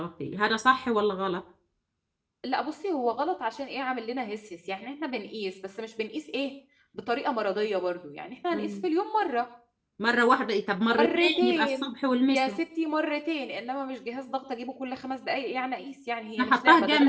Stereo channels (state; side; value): identical; both; correlation 1.00